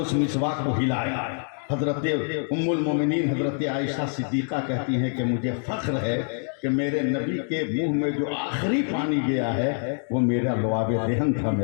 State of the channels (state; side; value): silent; right; 61 dB below the other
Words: مسواک کو ہلایا. حضرت ام المومنین حضرت عائشہ صدیقہ کہتی ہیں کہ مجھے فخر ہے کہ میرے نبی کے منہ میں جو آخری پانی گیا ہے وہ میرا لعاب دہن تھا.